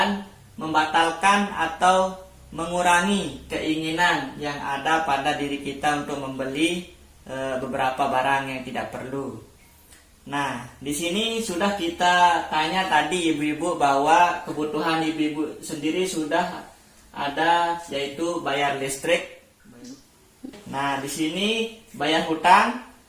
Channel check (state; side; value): identical; both; correlation 1.00